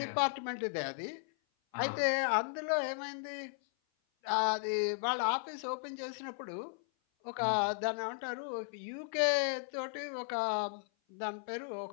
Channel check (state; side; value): silent; right; 54 dB below the other